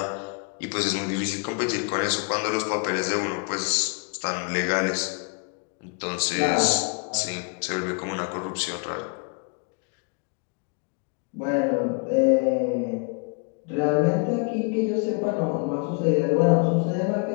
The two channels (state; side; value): quieter; right; 36.6 dB